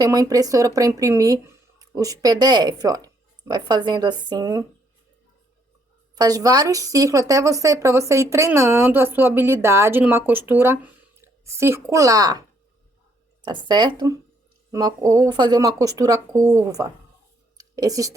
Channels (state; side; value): normal; both; correlation 0.70